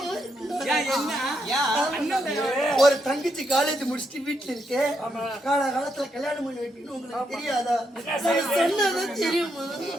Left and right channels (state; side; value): normal; both; correlation 0.79